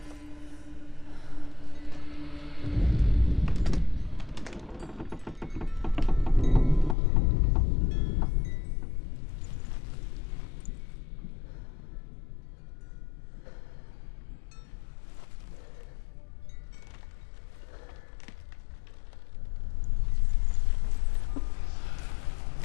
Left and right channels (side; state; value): right; drops out; at 7.0 s